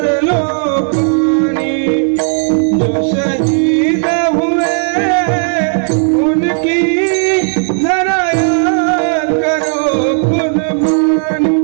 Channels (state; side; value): silent; left; 61 dB below the other